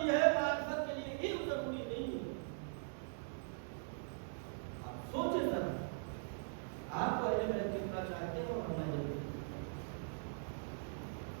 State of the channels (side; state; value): left; silent; digital silence